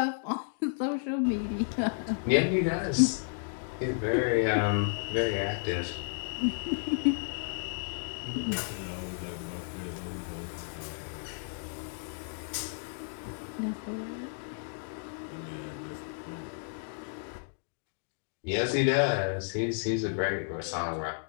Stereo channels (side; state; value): right; silent; digital silence